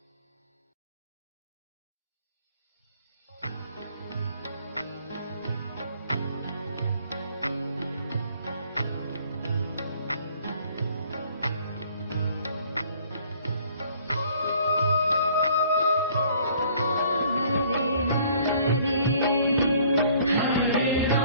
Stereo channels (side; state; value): both; inverted; correlation -0.57